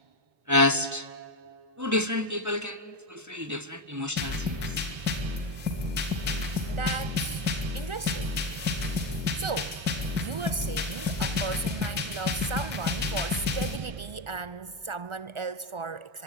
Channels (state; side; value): late; left; 1.4 ms